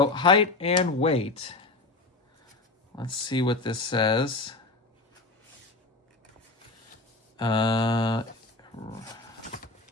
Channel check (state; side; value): quieter; right; 3.3 dB